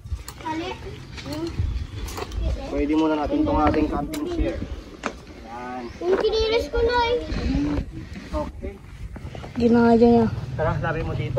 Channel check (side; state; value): both; identical; correlation 1.00